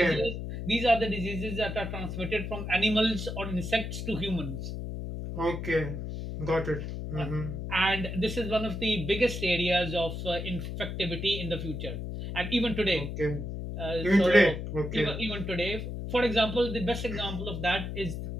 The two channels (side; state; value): left; noise; hum, 5 dB below the sound